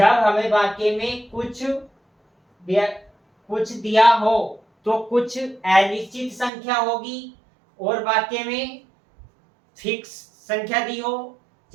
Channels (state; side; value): drops out; left; at 6.5 s